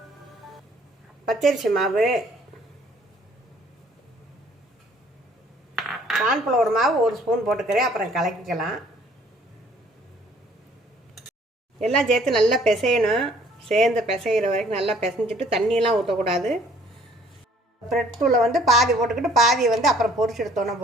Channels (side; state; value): both; normal; correlation 0.58